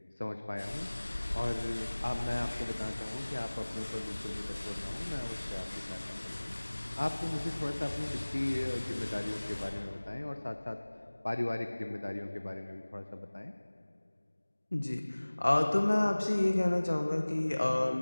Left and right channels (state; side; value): inverted; both; correlation -1.00